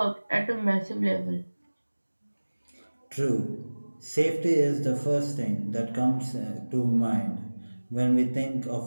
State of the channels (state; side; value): inverted; both; correlation -1.00